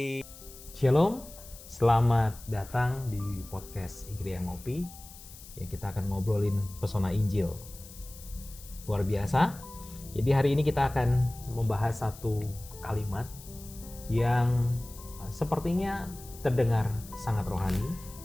Shalom, selamat datang di podcast Igria Ngopi. Ya, kita akan ngobrolin pesona Injil. Luar biasa. Jadi hari ini kita akan membahas satu kalimat yang sepertinya terdengar sangat rohani.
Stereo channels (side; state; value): left; noise; hiss, 18 dB below the sound